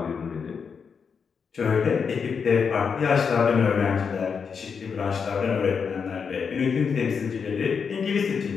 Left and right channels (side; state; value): right; quieter; 6.1 dB